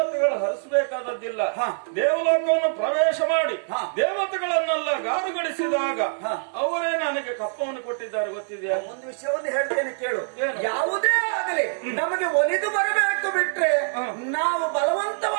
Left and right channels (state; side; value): silent; left; digital silence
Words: ಹರಿಸಬೇಕಾದದ್ದಿಲ್ಲ. ದೇವಲೋಕವನ್ನು ಪ್ರವೇಶ ಮಾಡಿ ದೇವತೆಗಳನ್ನೆಲ್ಲ ಗಾರುಗಳಿಸಿದಾಗ ಅವರೇ ನನಗೆ ಕಪ್ಪವನ್ನು ಕೊಟ್ಟಿದ್ದಾರೆ. ಗೊತ್ತಿದೆಯಾ? ಒಂದು ವಿಷಯವನ್ನು ಹೇಳ್ತೇನೆ ಕೇಳು. ಯಾವುದೇ ಆಗಲಿ ನಮಗೆ ಒಲಿದು ಬರಬೇಕು ಬಿಟ್ರೆ ನಾವು